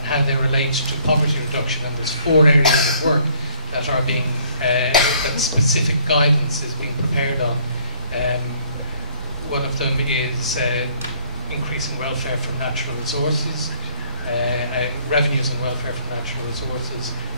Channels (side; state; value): both; inverted; correlation -0.60